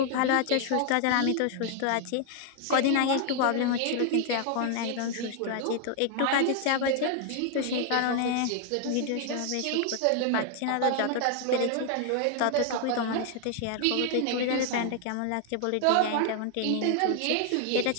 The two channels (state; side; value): different; both; correlation 0.00